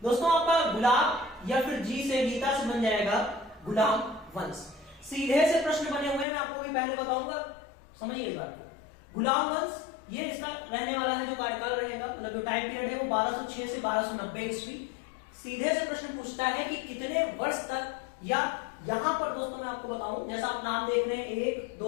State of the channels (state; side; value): drops out; right; at 6.2 s